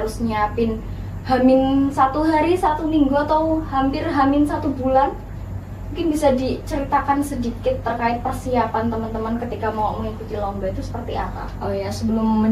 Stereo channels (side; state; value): both; identical; correlation 1.00